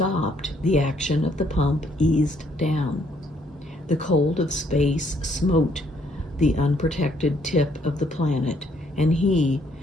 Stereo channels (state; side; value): normal; both; correlation 0.68